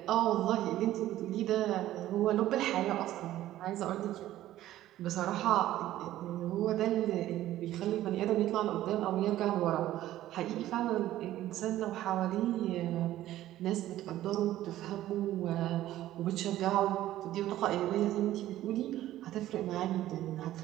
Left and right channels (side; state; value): left; quieter; 14.0 dB